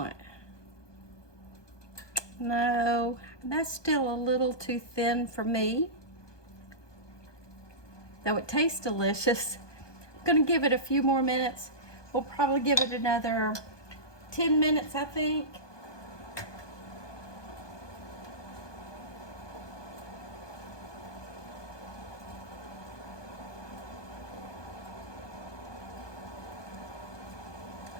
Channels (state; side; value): late; right; 1.2 ms